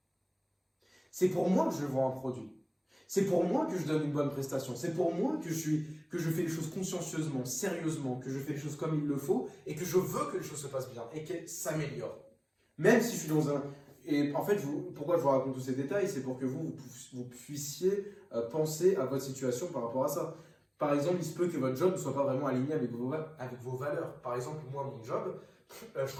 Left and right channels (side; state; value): both; identical; correlation 1.00